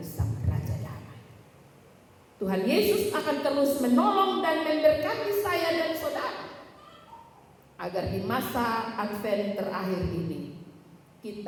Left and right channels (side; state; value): both; identical; correlation 1.00